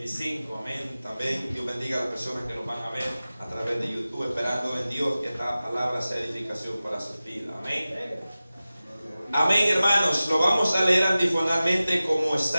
Amén. También Dios bendiga a las personas que nos van a ver a través de YouTube, esperando en Dios que esta palabra sea edificación para sus vidas. Amén. Amén, hermanos. Lo vamos a leer antifonalmente como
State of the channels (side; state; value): both; inverted; correlation -0.96